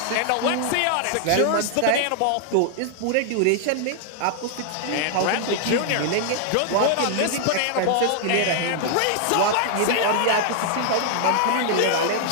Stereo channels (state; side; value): different; both; correlation 0.00